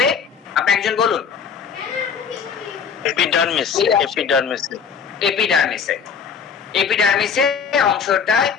আপনি একজন বলুন। এপিডার্মিসে অংশটায়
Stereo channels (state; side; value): quieter; right; 6.5 dB